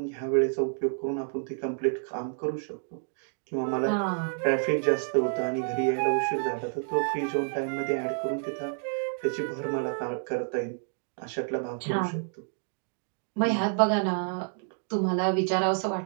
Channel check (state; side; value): silent; left; 59 dB below the other